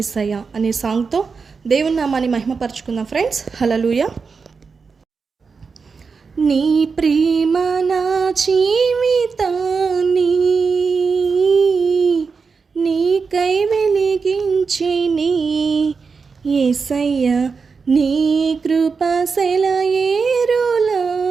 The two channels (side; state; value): left; quieter; 5.1 dB